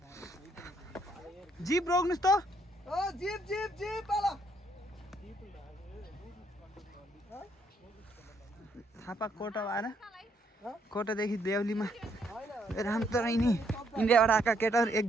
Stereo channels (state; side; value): normal; both; correlation 0.71